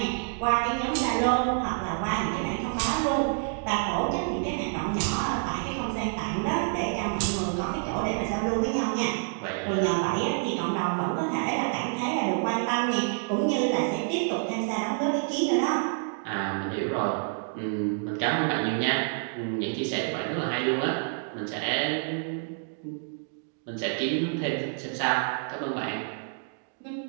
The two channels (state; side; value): silent; left; 59 dB below the other